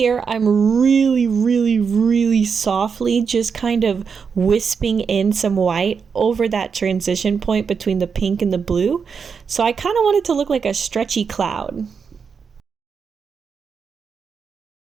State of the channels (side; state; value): left; quieter; 6.0 dB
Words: I'm really, really, really softly just kind of wisping in some white over that transition point between the pink and the blue. So I kind of want it to look like a stretchy cloud.